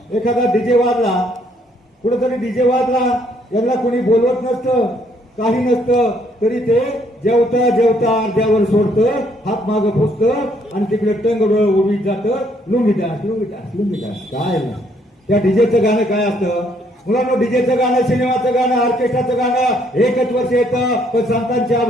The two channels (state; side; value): normal; both; correlation 0.68